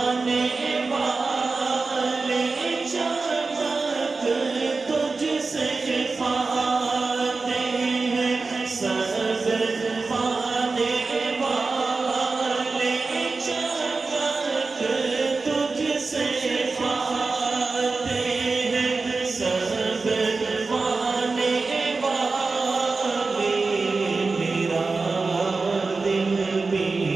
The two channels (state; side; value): quieter; left; 4.0 dB